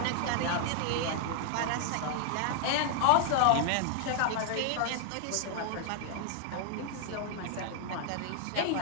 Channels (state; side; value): different; both; correlation 0.00